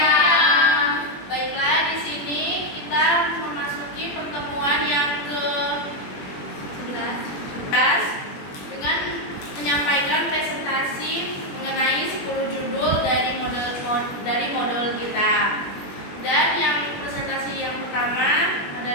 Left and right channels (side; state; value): right; late; 21 ms